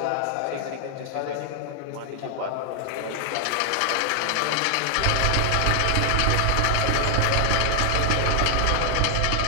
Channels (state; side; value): different; both; correlation 0.00